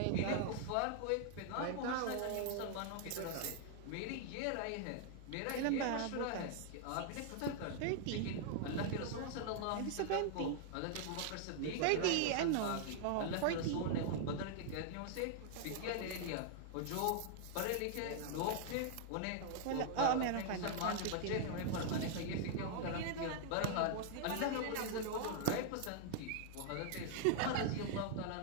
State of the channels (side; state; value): both; different; correlation -0.01